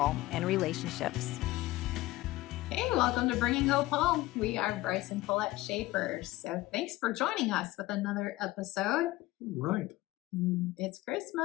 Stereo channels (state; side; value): quieter; right; 18.1 dB